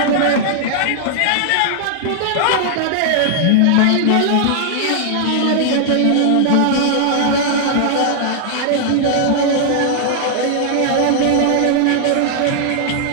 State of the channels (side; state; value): both; different; correlation -0.01